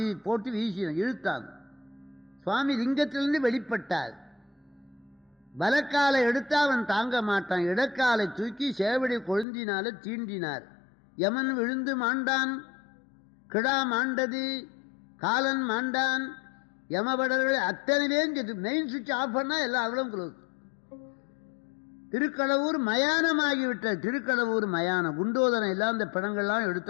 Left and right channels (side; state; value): right; drops out; at 9.5 s